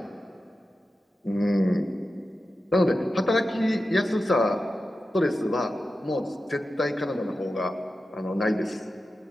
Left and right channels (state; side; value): normal; both; correlation 0.92